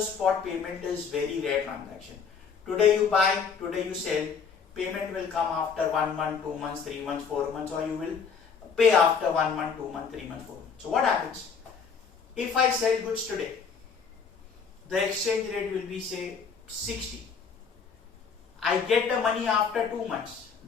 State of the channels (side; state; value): right; quieter; 5.9 dB